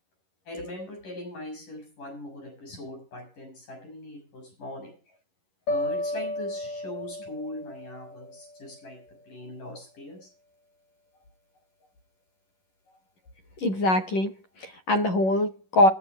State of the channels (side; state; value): right; late; 11 ms